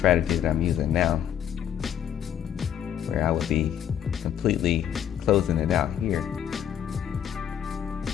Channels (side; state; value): right; quieter; 9.8 dB